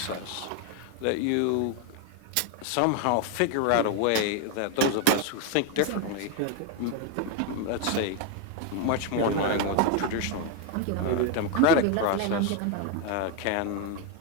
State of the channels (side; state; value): both; different; correlation 0.01